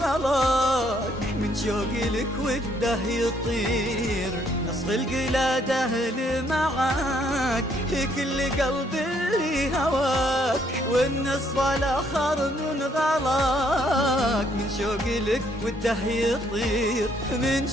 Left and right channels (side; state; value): both; normal; correlation 0.68